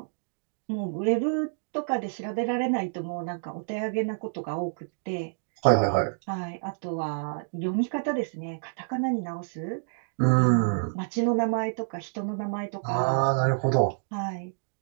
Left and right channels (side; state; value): left; silent; digital silence